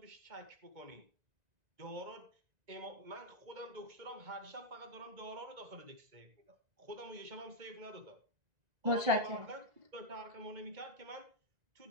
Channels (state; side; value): late; left; 1.9 ms